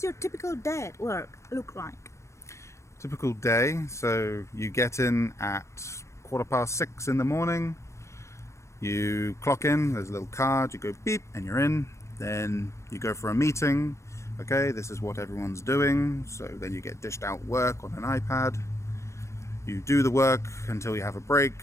your typical day at work look like? Typical day. So you get in at 6:15 in the morning. You clock in, there's a little card, you go beep and you're in. Then you go for a meeting. Okay, this is what everyone's doing. So then you get dished out work on an iPad. You do the work until you have a break,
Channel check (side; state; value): right; late; 0.14 ms